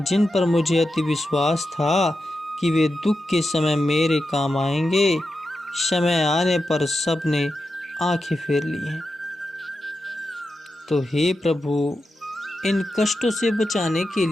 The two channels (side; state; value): both; normal; correlation 0.89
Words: पर मुझे अति विश्वास था कि वे दुख के समय मेरे काम आएंगे, समय आने पर सब ने आंखें फेर ली हैं। तो हे प्रभु, इन कष्टों से बचाने के